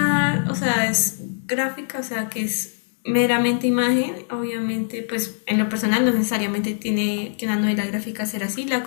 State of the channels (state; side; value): silent; right; digital silence